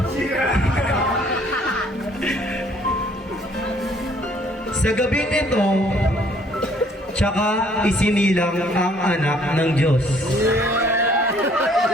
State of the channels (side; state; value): both; normal; correlation 0.61